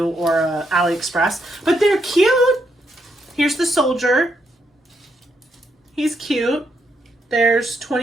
or a AliExpress, but they're cute. Here's the soldier. He's cute. There's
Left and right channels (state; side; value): normal; both; correlation 0.78